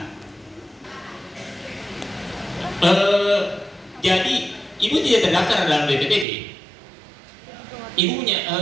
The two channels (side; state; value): left; drops out; at 6.2 s